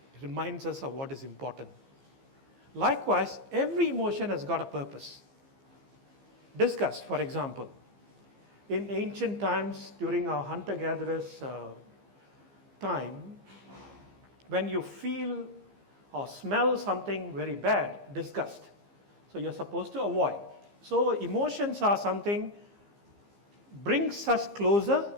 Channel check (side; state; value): left; late; 15 ms